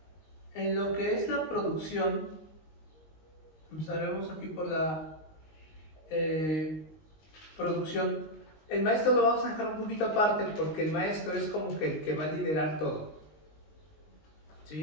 lo que es la producción, empezaremos aquí por la producción. El maestro lo vamos a dejar un poquito aparte porque el maestro es como que el que va a liderar todo,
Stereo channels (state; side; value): late; right; 19 ms